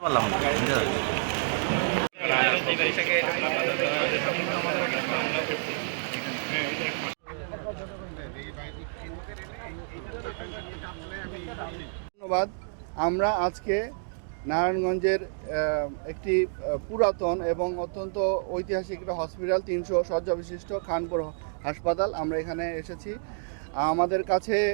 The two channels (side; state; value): left; silent; digital silence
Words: পারলাম না। ধন্যবাদ। আমরা আজকে নারায়ণগঞ্জের একটি পুরাতন এবং অত্যন্ত ঐতিহাসিক একটা হসপিটাল, 300 শয্যা বিশিষ্ট খানপুর হাসপাতাল, আমরা এখানে এসেছি। আমাদের কাছে